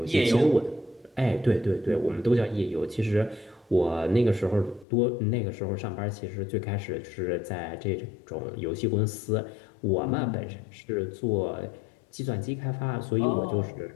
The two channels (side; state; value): right; drops out; at 4.9 s